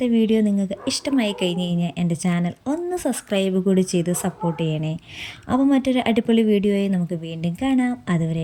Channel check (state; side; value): identical; both; correlation 1.00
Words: വീഡിയോ നിങ്ങൾക്ക് ഇഷ്ടമായി കഴിഞ്ഞ് കഴിഞ്ഞാൽ എൻ്റെ ചാനൽ ഒന്ന് സബ്സ്ക്രൈബ് കൂടി ചെയ്ത് സപ്പോർട്ട് ചെയ്യണേ. അപ്പോൾ മറ്റൊരു അടിപൊളി വീഡിയോയെ നമുക്ക് വീണ്ടും കാണാം.